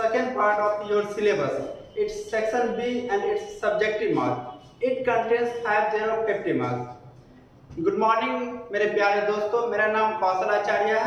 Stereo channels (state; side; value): identical; both; correlation 1.00